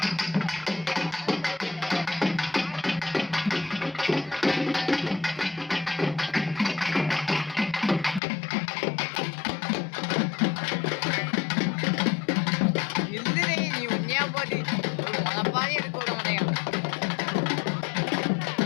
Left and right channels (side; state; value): right; drops out; at 8.2 s